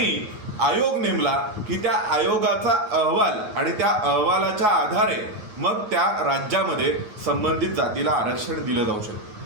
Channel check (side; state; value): left; late; 9.5 ms